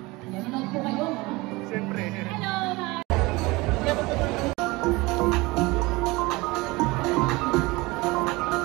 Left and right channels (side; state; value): left; quieter; 22.7 dB